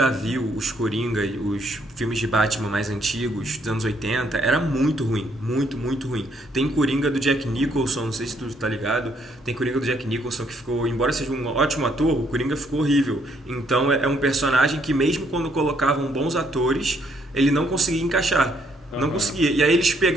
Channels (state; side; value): normal; both; correlation 0.70